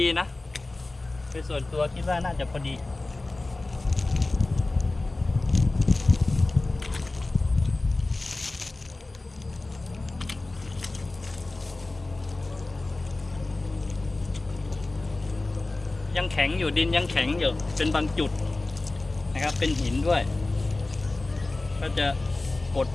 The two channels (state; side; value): quieter; right; 3.1 dB